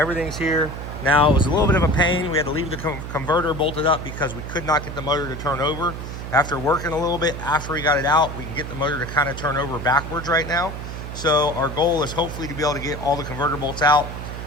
here. Now it was a little bit of a pain. We had to leave the converter bolted up because we could not get the motor to turn over. After working a little bit, after we got it out, we can get the motor to kind of turn over backwards right now. So our goal is hopefully to be able to get all the converter bolts out.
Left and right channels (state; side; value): noise; right; hum, 8 dB below the sound